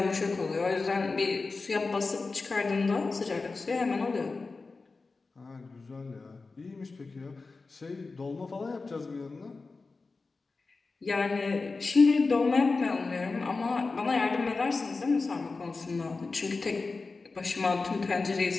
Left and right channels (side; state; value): right; quieter; 4.0 dB